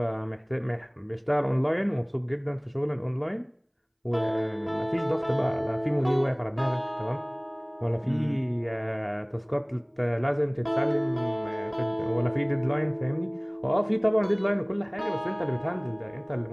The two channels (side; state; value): both; identical; correlation 1.00